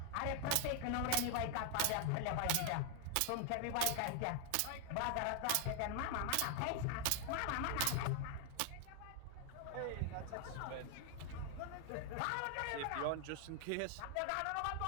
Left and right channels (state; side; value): different; both; correlation 0.00